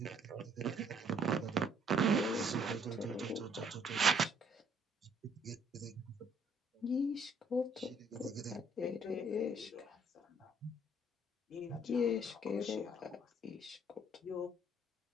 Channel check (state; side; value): normal; both; correlation 0.63